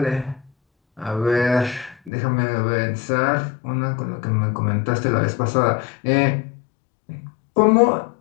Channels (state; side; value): drops out; right; at 2.1 s